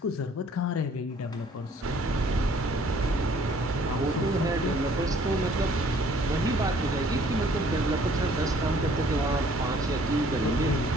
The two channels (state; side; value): normal; both; correlation 0.58